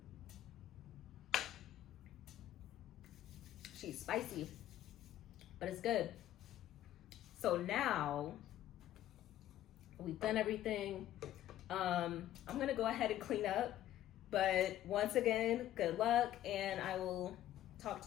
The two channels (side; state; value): right; quieter; 12.9 dB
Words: She's spicy, but it's good. So now we've done everything. I'm gonna go ahead and clean up, but once again, good luck, and I will talk